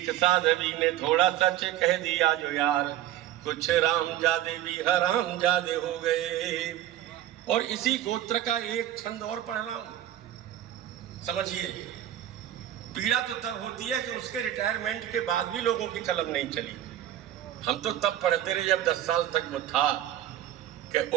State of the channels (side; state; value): left; quieter; 12.5 dB